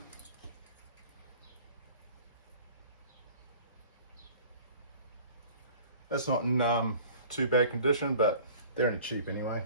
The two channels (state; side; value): inverted; both; correlation -0.46